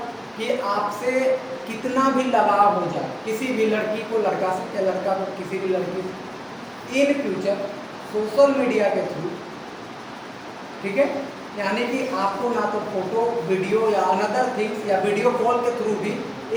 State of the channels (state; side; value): identical; both; correlation 1.00